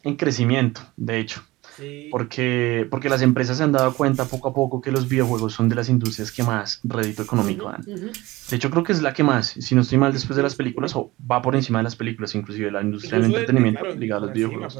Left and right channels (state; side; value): quieter; left; 19.9 dB